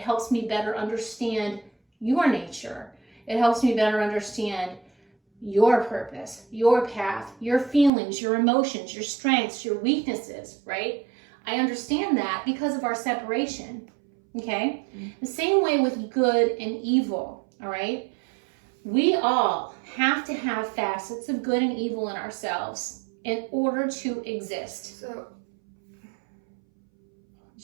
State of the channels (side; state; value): left; drops out; at 7.9 s